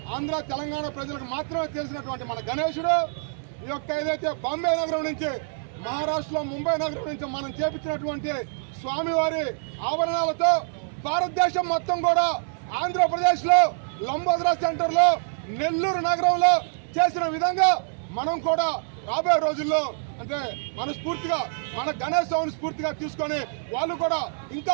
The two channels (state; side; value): silent; left; 61 dB below the other